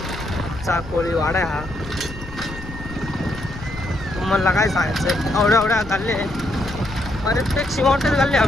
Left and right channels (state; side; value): noise; left; rumble, 13 dB below the sound